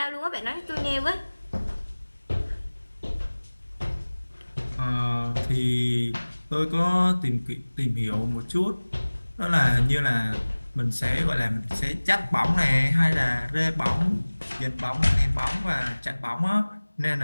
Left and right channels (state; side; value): inverted; both; correlation -1.00